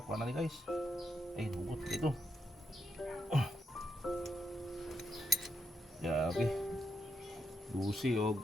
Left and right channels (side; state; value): both; normal; correlation 0.81